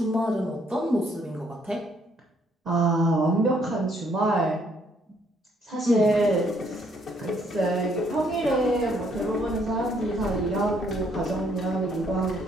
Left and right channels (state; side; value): normal; both; correlation 0.68